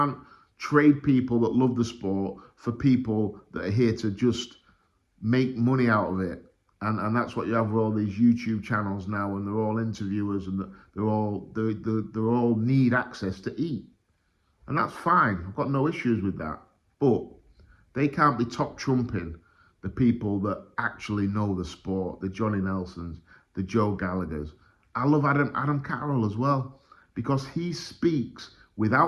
trade people that love the sport for people that are here to just make money out of it. And that's what you have with all these YouTube channels now, and they're all interviewers, and they're all need access to eat, and that's fine. I've got no issues with that, but they can't be top trumping the people that actually know the sport, the Johnny Nelsons, the Joe Gallaghers. I love Adam Carroll as well, because he speaks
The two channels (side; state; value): both; identical; correlation 1.00